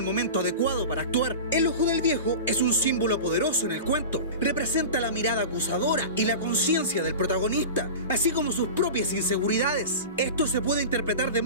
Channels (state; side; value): inverted; both; correlation -0.31